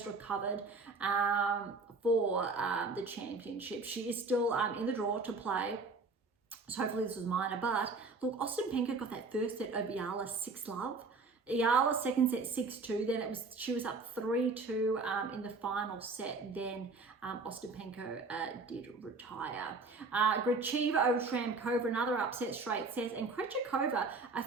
recovered for the championship. She is still in the draw to play. So hopefully this was minor. But look, Ostapenko got that 1st set over Iyala 6-love. Iyala 2nd set 6-2. Then she was up 3-2 in the final set. Then Ostapenko did retire. Gracheva over Shramkova, another upset straight set, and Krejcikova, a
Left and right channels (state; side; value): quieter; left; 3.8 dB